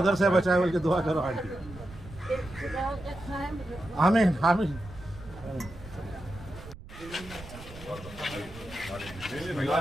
से बचाए बोल के दुआ करो आंटी। आमीन आमीन।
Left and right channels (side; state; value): right; noise; rumble, 16 dB below the sound